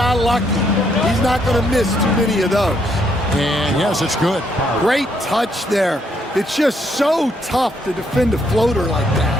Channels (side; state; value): both; normal; correlation 0.73